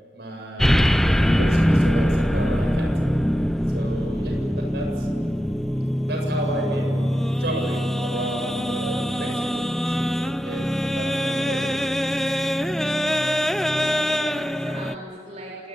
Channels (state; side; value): normal; both; correlation 0.91